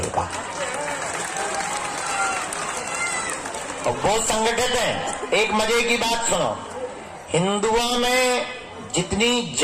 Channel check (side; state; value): both; identical; correlation 1.00